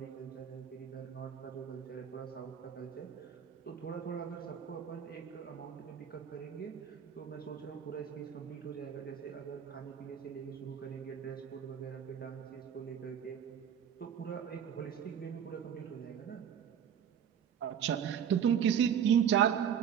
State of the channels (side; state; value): left; quieter; 8.5 dB